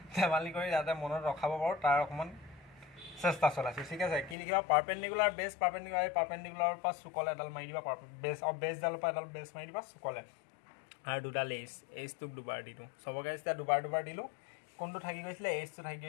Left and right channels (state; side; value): drops out; right; at 4.4 s